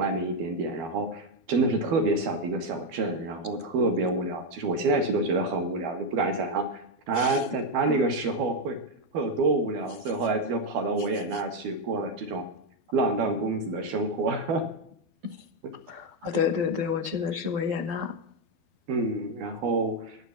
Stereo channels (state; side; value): late; left; 12 ms